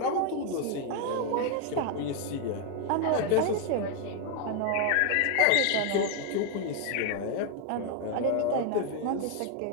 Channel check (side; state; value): both; different; correlation 0.01